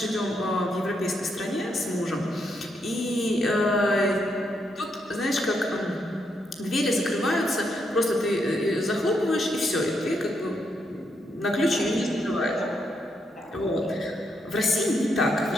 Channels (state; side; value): normal; both; correlation 0.79